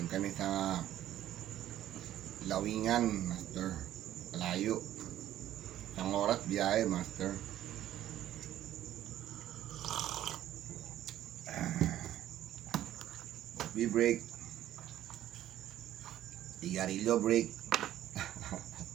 kami sa Lawingan master. Malayo. Isang oras biyahe master. Coffee break. Sigarilyo break.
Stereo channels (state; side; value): quieter; left; 12.6 dB